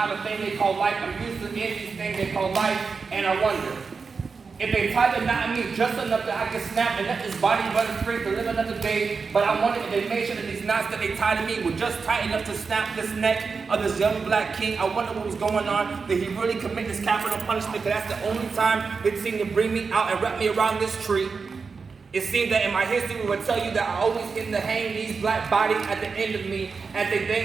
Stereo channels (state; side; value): quieter; left; 5.0 dB